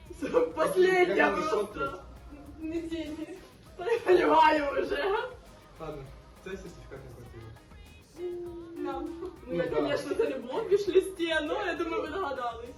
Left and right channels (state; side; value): identical; both; correlation 1.00